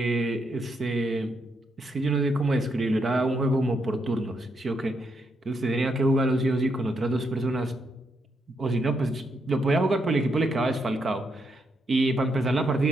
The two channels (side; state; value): both; normal; correlation 0.79